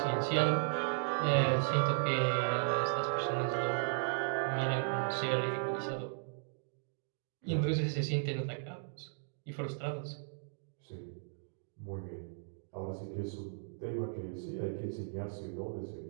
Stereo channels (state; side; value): silent; left; digital silence